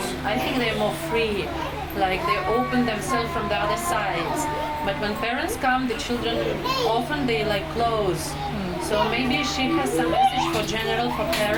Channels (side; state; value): both; identical; correlation 1.00